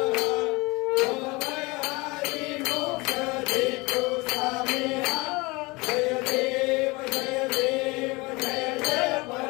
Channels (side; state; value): right; quieter; 24.9 dB